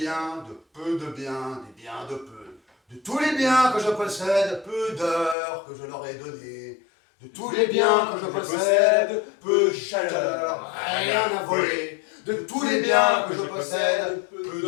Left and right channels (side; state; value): right; drops out; at 5.4 s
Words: de peu de biens, des biens de peu. De tous les biens que je possède, peu d'heures que je leur ai données. De tous les biens que je possède, peu de chaleur, rien à voler. De tous les biens que je possède, peu